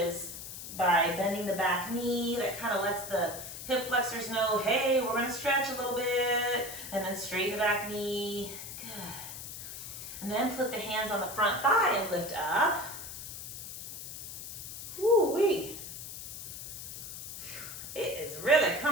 by bending the back knee. That kind of lets the hip flexors know, hey, we're going to stretch a little bit. And then straighten the back knee. Good. And then put the hands on the front thigh and lift up. Woo-wee. It is really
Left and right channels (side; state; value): left; noise; hiss, 10 dB below the sound